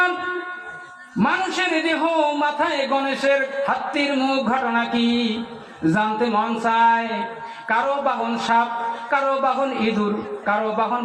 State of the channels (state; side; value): identical; both; correlation 1.00